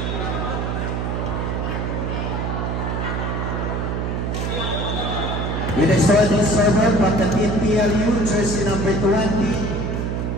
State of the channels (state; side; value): noise; right; hum, 1 dB below the sound